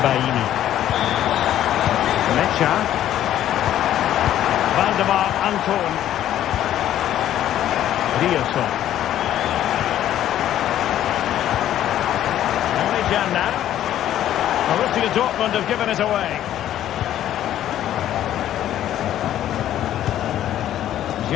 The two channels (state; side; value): quieter; right; 11.9 dB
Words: Mecha. Valdemar Anton. Riosson. Only Jan now. Borussia Dortmund have given it away.